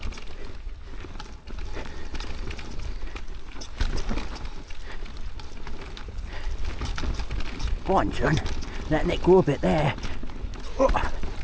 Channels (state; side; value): identical; both; correlation 1.00